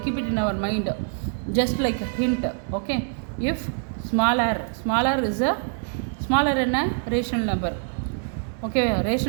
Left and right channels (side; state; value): left; silent; 62 dB below the other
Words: keep it in our mind, just like a hint. Okay, if smaller is a smaller in a rational number. Okay,